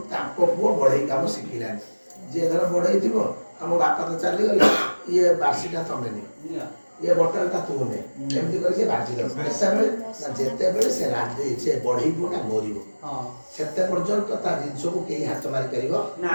ତାଙ୍କ ପୁଅ ବଢେଇ କାମ ଶିଖିଲାନି। ଯିଏ ଧର ବଢେଇ ଥିବ ଆମ ବାପା ତ ଚାଲିଗଲେ ଇଏ ବାର୍ଷିକା ତମେ ନିଅ ଇଏ ବଟାଳିଟା ତୁ ନେ ଏମିତି କରି ସେ ବାଜିଦବ। ଯେତେବେଳେ ସେ ବଢେଇ ପୁଅଟା ମରିବ ସେତେ ପର୍ଯ୍ୟନ୍ତ ତା ଜିନିଷକୁ କେହି ହାତ ମାରିପାରିବ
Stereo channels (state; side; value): inverted; both; correlation -1.00